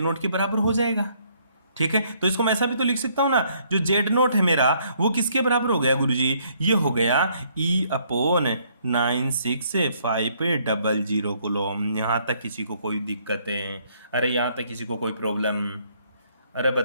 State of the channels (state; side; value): inverted; both; correlation -0.67